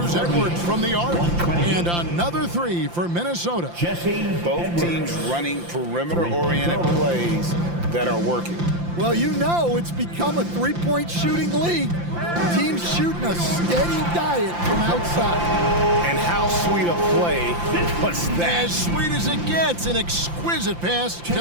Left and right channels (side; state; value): left; late; 5.8 ms